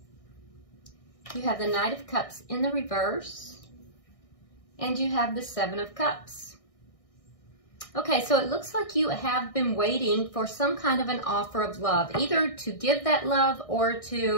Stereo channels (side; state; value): right; late; 1.6 ms